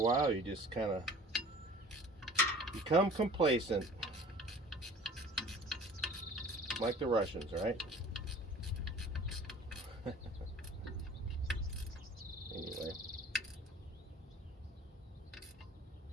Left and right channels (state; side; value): normal; both; correlation 0.46